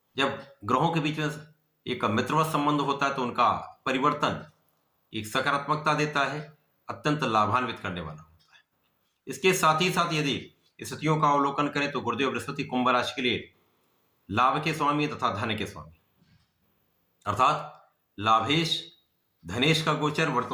जब ग्रहों के बीच में एक मित्रवत संबंध होता है तो उनका परिवर्तन एक सकारात्मकता देता है, अत्यंत लाभान्वित करने वाला होता है। इसके साथ ही साथ यदि स्थितियों का अवलोकन करें तो गुरुदेव बृहस्पति कुंभ राशि के लिए लाभ के स्वामी तथा धन के स्वामी, अर्थात लाभेश धनेश का गोचर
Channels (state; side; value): identical; both; correlation 1.00